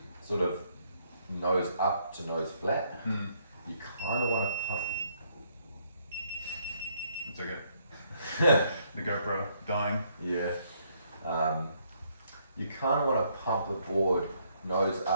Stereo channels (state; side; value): inverted; both; correlation -0.70